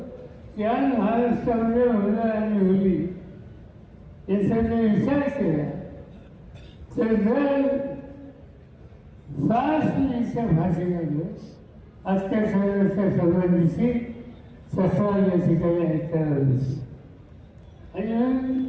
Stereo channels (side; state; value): both; identical; correlation 1.00